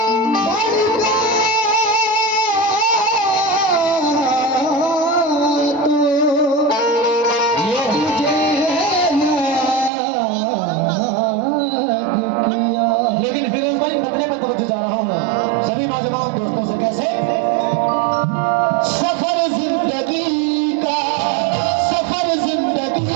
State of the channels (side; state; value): left; drops out; at 9.9 s